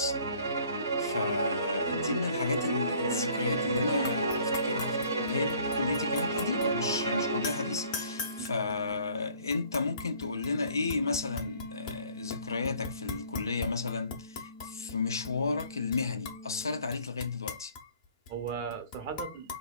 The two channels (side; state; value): both; inverted; correlation -0.56